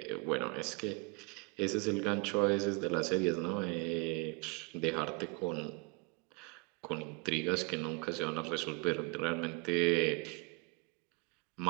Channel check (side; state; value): left; quieter; 29.3 dB